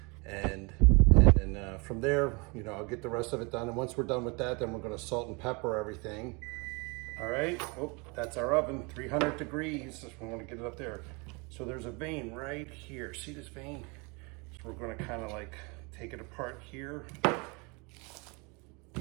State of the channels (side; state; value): left; quieter; 29.8 dB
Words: And then from there, I'll get the rest of it done. And once we're done with that, then we're gonna salt and pepper everything. All right, that's our oven, 300 degrees. We wanna get it up there. So there's a vein right here. See this vein? So we're gonna kind of like take it apart here. There